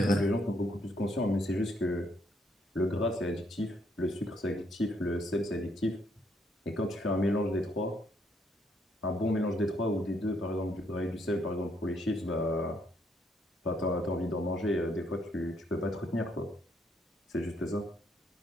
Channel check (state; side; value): normal; both; correlation 0.72